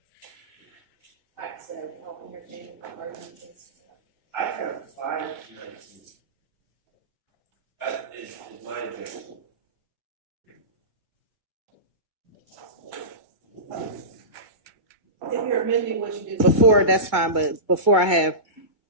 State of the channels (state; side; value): late; left; 2.2 ms